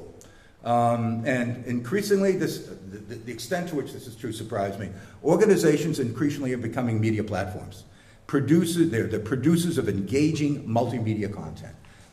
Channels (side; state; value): both; identical; correlation 1.00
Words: And increasingly, the extent to which this is true surprised me. Organizations increasingly are becoming media platforms. They're the producers of engaging multimedia content,